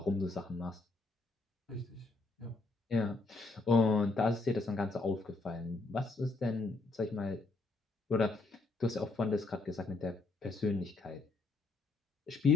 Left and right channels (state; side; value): quieter; right; 3.5 dB